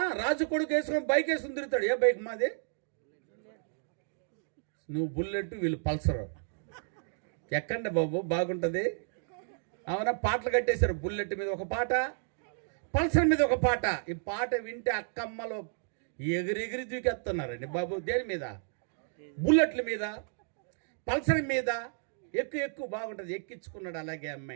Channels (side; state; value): left; silent; digital silence